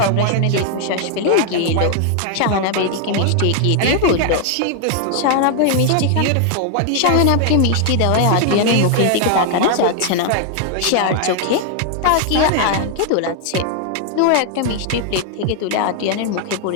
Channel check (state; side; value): different; both; correlation 0.00